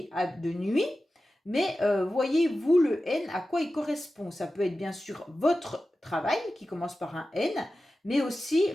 de nuit, mais voyez-vous le N, à quoi il correspond? Ça peut être bien sûr votre travail qui commence par un N, mais aussi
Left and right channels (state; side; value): normal; both; correlation 0.94